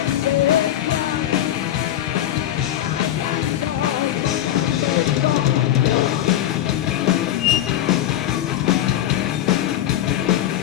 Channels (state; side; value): quieter; right; 12.0 dB